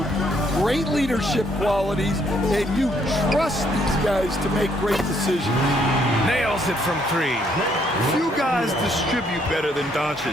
Great leadership qualities, and you trust these guys to make great decisions. Nails it from 3. Few guys distribute better than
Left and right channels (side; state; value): both; normal; correlation 0.69